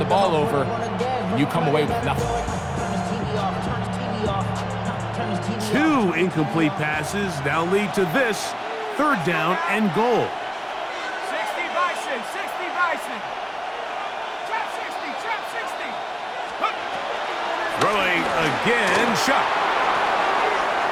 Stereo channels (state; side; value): identical; both; correlation 1.00